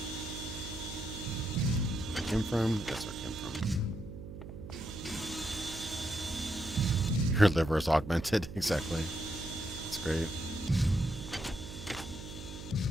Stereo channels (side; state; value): right; noise; hum, 11 dB below the sound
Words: where I came from. That's where I came from. Your liver is augmented. Exactly. That's great.